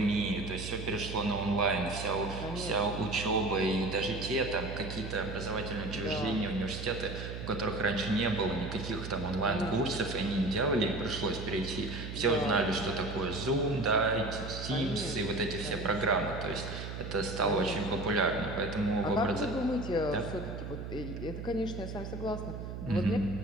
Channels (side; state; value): right; noise; hum, 7 dB below the sound